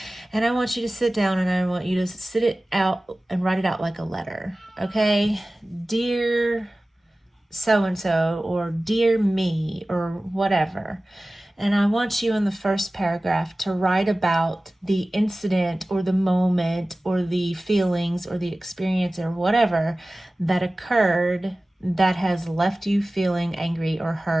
And I want you to sit down and I want you to sit it out and write it out like a letter, okay? Dear so-and-so, or dear me, or whatever. And I want you in the first paragraph to write about the incident or the moment or the feelings or the experience or whatever that occurred that has left you feeling angry or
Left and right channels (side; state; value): both; normal; correlation 0.97